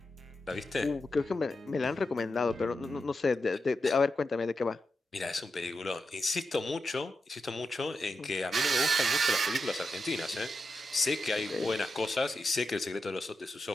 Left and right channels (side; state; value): both; normal; correlation 0.88